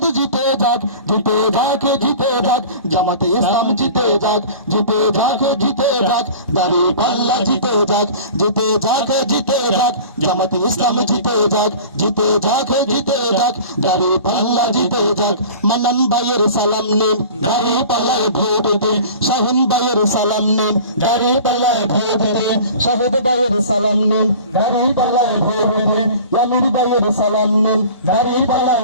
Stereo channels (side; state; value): both; inverted; correlation -0.41